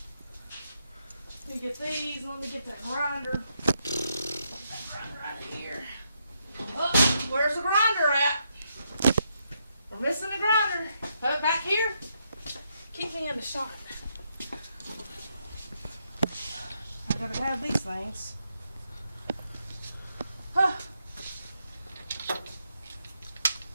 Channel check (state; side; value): inverted; both; correlation -0.79